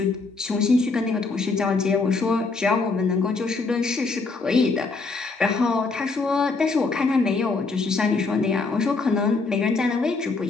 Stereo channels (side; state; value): right; quieter; 3.9 dB